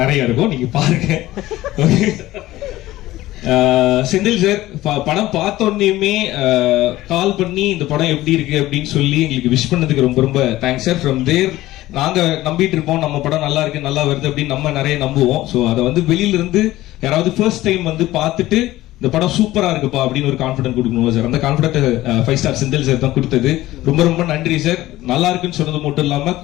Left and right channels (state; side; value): quieter; right; 16.4 dB